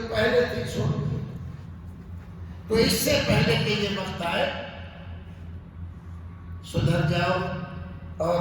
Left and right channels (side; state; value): both; identical; correlation 1.00